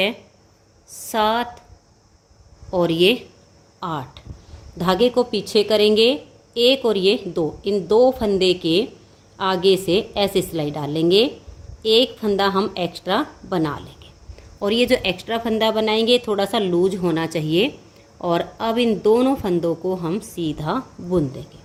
7 और ये 8। धागे को पीछे करेंगे, 1 और ये 2, इन 2 फंदे के आगे से ऐसे सिलाई डालेंगे, एक फंदा हम एक्स्ट्रा बना लेंगे और ये जो एक्स्ट्रा फंदा बनाएंगे थोड़ा सा लूज होना चाहिए। और अब इन दोनों फंदों को हम सीधा बुन देंगे।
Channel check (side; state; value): both; identical; correlation 1.00